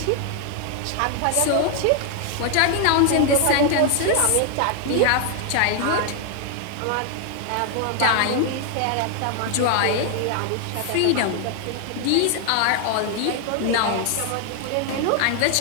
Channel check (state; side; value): different; both; correlation 0.00